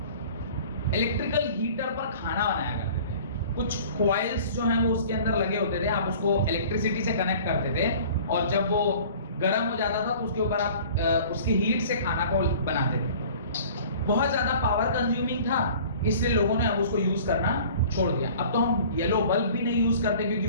इलेक्ट्रिकल हीटर पर खाना बनाया करते थे। कुछ कॉइल्स जो हैं वो उसके अंदर लगे होते थे, आप उसको इलेक्ट्रिसिटी से कनेक्ट करते थे और जब वो गर्म हो जाता था तो उसके ऊपर आप उसकी हीट से खाना को बनाते थे। बहुत ज्यादा पावर कंज्यूमिंग था, इसलिए लोगों ने अब उसको यूज करना छोड़ दिया। अब तो हम येलो बल्ब भी नहीं यूज करते क्योंकि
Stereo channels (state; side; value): inverted; both; correlation -0.47